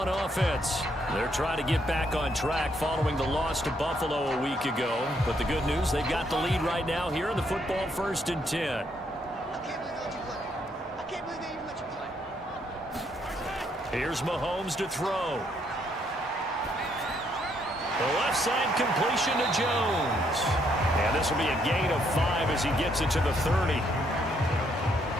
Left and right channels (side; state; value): both; normal; correlation 0.72